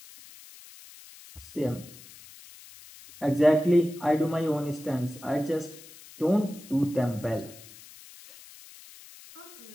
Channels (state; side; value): noise; left; hiss, 20 dB below the sound